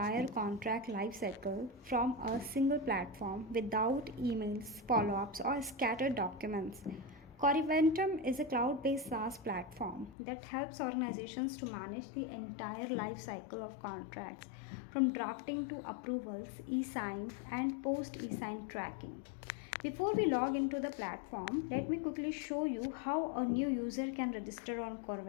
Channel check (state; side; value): drops out; right; at 10.2 s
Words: contract lifecycle from a single platform without emails, follow-ups or scattered documents. Coreventum is a cloud-based SaaS platform that helps organizations to manage the entire life cycle of contracts, from drafting to approvals, e-sign, and post-e-sign tracking. Before we log into the platform, let me quickly show you how a new user can register on